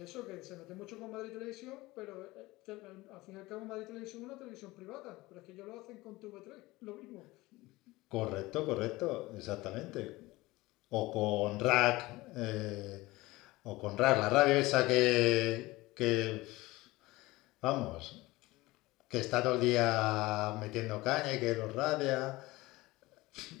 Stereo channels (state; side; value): quieter; right; 20.0 dB